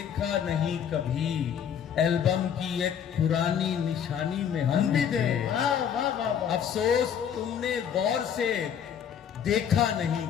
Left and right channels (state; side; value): quieter; right; 8.4 dB